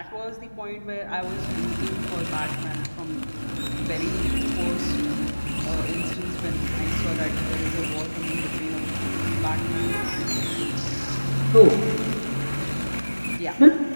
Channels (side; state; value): both; inverted; correlation -1.00